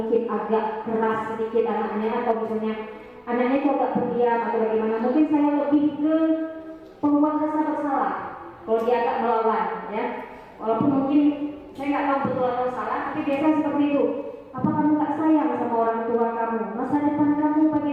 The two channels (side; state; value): both; identical; correlation 1.00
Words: agak keras sedikit anaknya, atau misalnya anaknya itu agak pendiam atau bagaimana, mungkin saya lebih ke pembuat rasa bersalah. Kalau dia agak melawan, ya, walaupun mungkin saya nggak tahu betul atau salah, tapi biasa seperti itu. Apa kamu nggak sayang sama orang tua kamu? Masa depan kamu